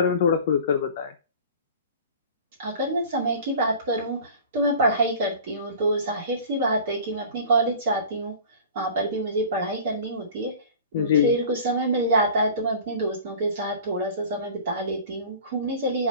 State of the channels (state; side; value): inverted; both; correlation -0.41